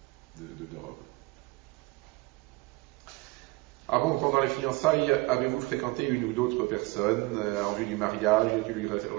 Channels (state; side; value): quieter; left; 22.7 dB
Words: de Rome. Avant ou pendant les fiançailles, avez-vous fréquenté une ou d'autres personnes en vue du mariage? Y a-t-il eu une